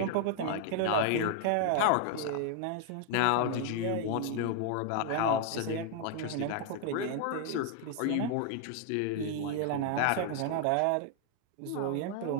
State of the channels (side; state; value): both; different; correlation 0.00